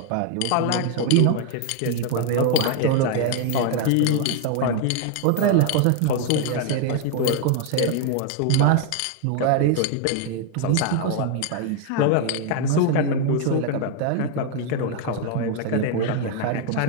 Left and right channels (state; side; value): different; both; correlation 0.00